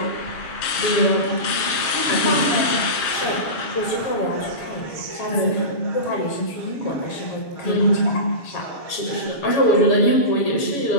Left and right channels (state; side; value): late; right; 7.4 ms